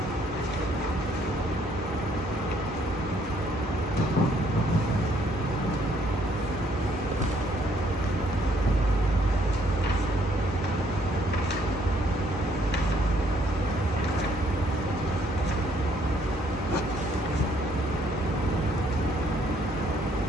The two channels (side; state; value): both; normal; correlation 0.67